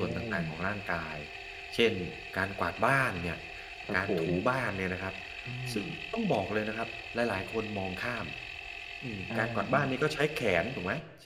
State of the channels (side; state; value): both; identical; correlation 1.00